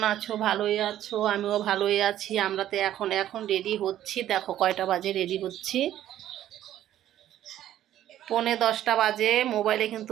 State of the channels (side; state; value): left; quieter; 12.3 dB